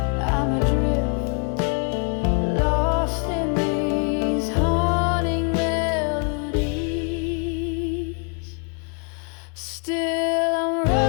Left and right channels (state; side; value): quieter; right; 37.6 dB